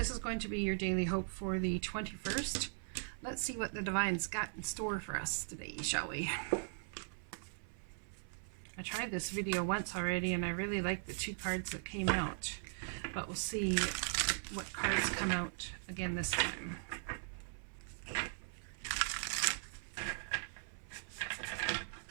is going to be your daily hope for the 21st. Let's see what the Divine's got in store for us today, shall we? I tried this video once already and I really liked the two cards that came out. But we'll see what cards come out again this time.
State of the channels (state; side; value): silent; left; 51 dB below the other